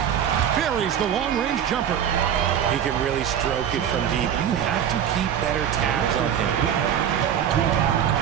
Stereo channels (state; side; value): quieter; left; 9.2 dB